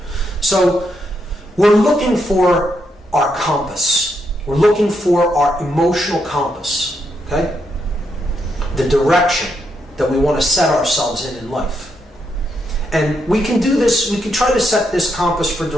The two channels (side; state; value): both; normal; correlation 0.79